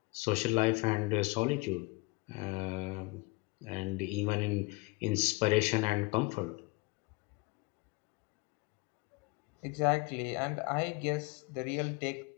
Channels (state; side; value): quieter; right; 26.2 dB